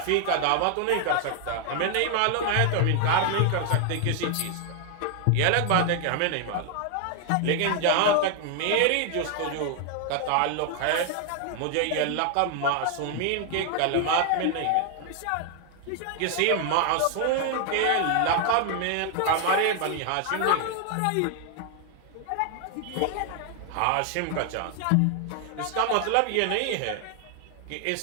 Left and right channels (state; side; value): different; both; correlation 0.00